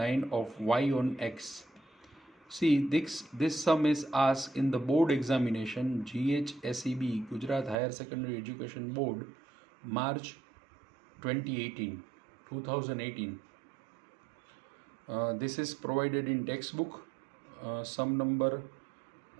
of y on x. See, this sum is asked in the board examination, GHSEB, Gujarat Higher Secondary Education Board, March 2018. This is provided in textbook, sum number,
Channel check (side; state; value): left; drops out; at 7.8 s